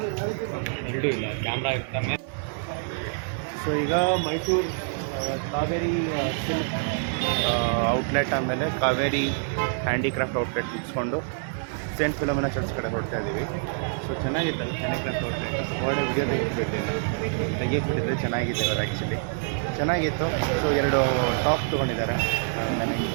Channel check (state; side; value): silent; left; digital silence